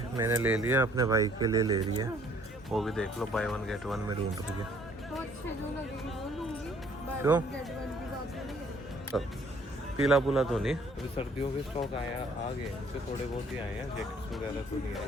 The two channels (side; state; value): both; normal; correlation 0.60